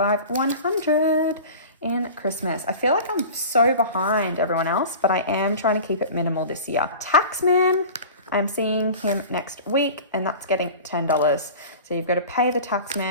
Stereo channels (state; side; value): inverted; both; correlation -0.37